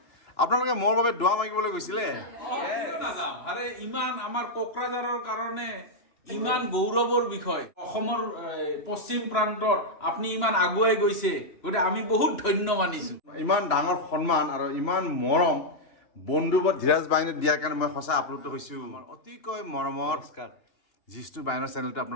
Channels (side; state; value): right; late; 2.9 ms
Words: আপোনালোকে মোৰ বাবে দোৱা মাগিবলৈ গৈছিলে নাযাম আৰে ইমান আমাৰ কোকৰাঝাৰৰ কাৰণে ইমান গৌৰৱৰ বিষয় অসমৰ পশ্চিম প্ৰান্তত আপুনি ইমান আগুৱাই গৈছে গতিকে আমি বহুত ধন্য মানিছো ইমান ডাঙৰ সন্মান আৰু ইমান মৰম বন্ধুবৰ ধীৰাজ বায়নে দিয়াৰ কাৰণে মই সঁচা আপ্লুত হৈছো অতিকৈ মৰমৰ জিষ্ণু বায়নৰ চেনেলটো